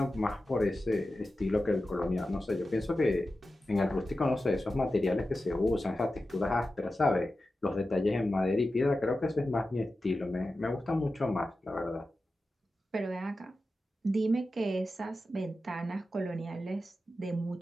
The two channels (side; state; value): both; normal; correlation 0.93